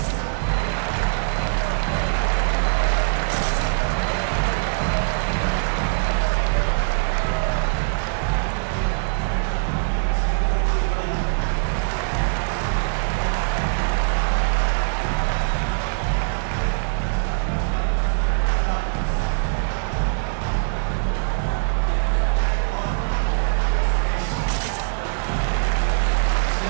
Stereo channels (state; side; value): silent; left; 64 dB below the other